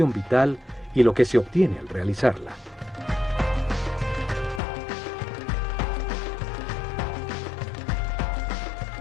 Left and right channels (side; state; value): right; drops out; at 4.6 s